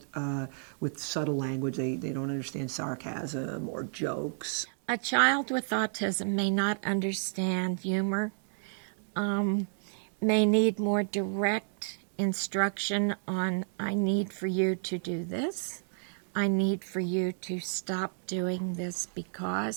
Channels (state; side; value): silent; left; digital silence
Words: with subtle language. They don't understand sarcasm or jokes. A child with autism may not understand humor, may need more direct instruction on, I need for you to do this. I need for you to stop doing this